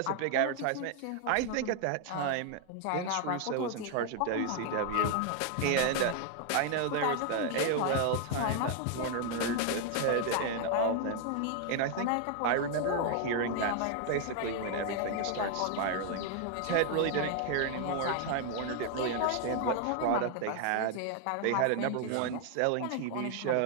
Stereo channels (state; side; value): different; both; correlation 0.00